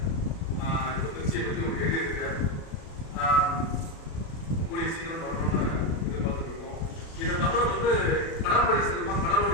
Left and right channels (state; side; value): late; right; 36 ms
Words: இப்போ திருச்சியை பற்றி ஒரு எழுதியிருக்கார். கூடிய சீக்கிரம் வரணும்னு எதிர்பார்த்துட்டு இருக்கோம். இதை தவிர வந்து கடற்படை சிறப்பாக